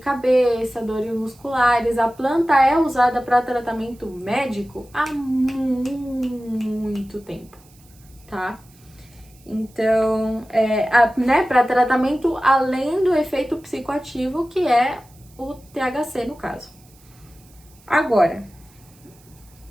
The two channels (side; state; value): right; noise; hiss, 28 dB below the sound